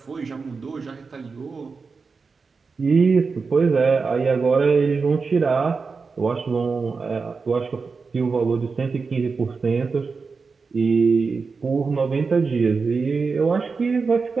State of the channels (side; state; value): left; quieter; 4.7 dB